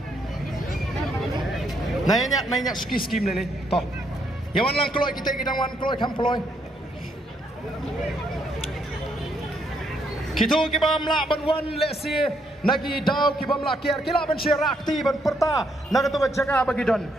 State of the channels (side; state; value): both; normal; correlation 0.74